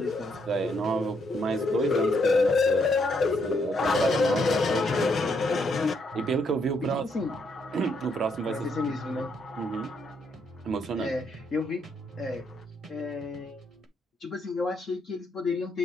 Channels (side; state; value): both; normal; correlation 0.75